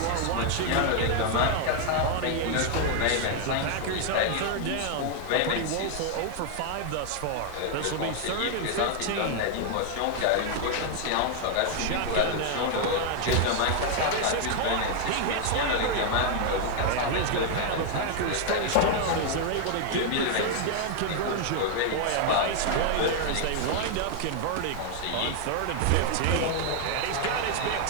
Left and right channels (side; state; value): both; different; correlation 0.00